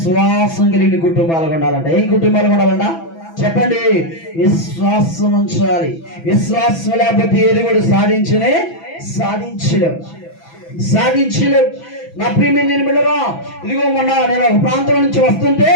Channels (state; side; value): late; right; 6.0 ms